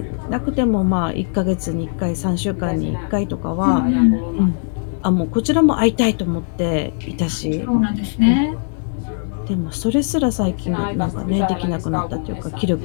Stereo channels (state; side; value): silent; right; 61 dB below the other